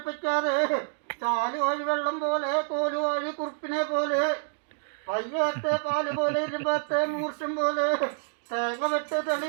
ചാല് വഴി വെള്ളം പോലെ, കോല് വഴി കുറുപ്പിനെ പോലെ, പയ്യത്തെ പാല് പോലെ, ഇരുപത്തെ മൂർഷം പോലെ, തേങ്ങ വെട്ട് തെളി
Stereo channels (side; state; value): left; silent; digital silence